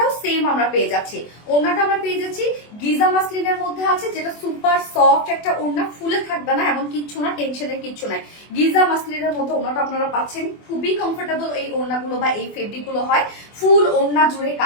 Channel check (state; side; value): late; right; 24 ms